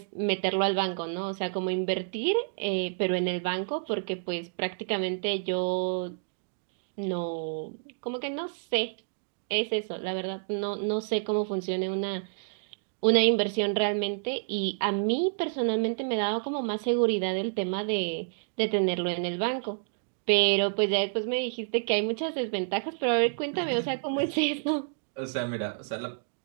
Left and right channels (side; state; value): left; silent; digital silence